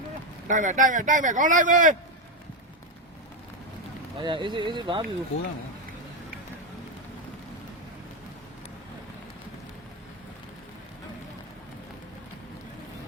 တိုက်မယ်ကောင်းလိုက်မယ်အေးစေးဘာပြီကိုရမယ်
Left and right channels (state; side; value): normal; both; correlation 0.08